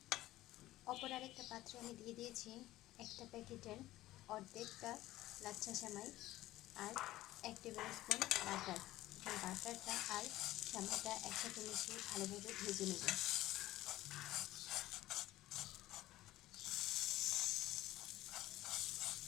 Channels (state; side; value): quieter; right; 16.0 dB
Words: অপর আরেকটা পাত্রে আমি দিয়ে দিয়েছি একটা প্যাকেটের অর্ধেকটা লাচ্ছা সেমাই আর 1 টেবিল স্পুন বাটার। বাটারটা আর সেমাইটা একসাথে মিশিয়ে ভালোভাবে ভেজে নেব।